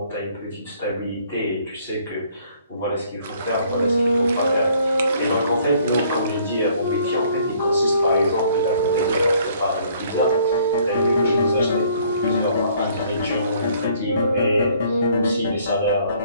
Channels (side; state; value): both; inverted; correlation -0.61